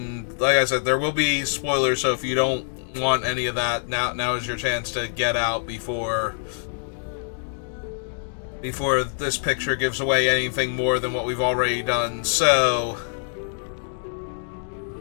like I said, there will be spoilers, so if you don't want any of that, now is your chance to get out before this picture gives away anything more than what we've already done. So,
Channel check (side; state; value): right; silent; digital silence